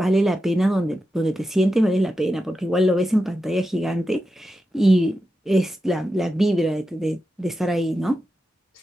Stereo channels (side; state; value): both; normal; correlation 0.89